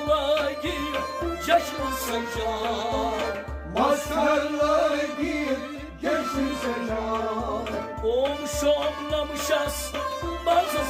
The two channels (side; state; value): both; identical; correlation 1.00